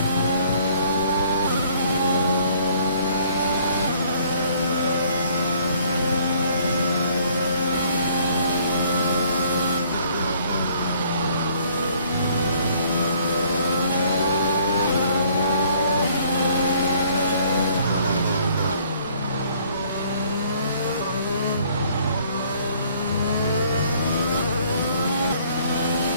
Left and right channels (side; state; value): both; inverted; correlation -0.60